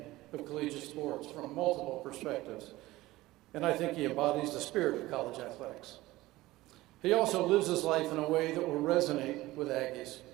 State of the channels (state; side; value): quieter; left; 18.1 dB